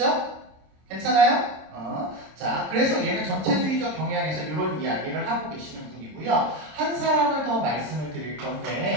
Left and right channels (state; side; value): late; left; 26 ms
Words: 괜찮아요? 자, 그래서 얘는 전체주의적 경향에서 이런 이야기를 하고 계시는 분이고요. 한 사람을 더 말씀을 드릴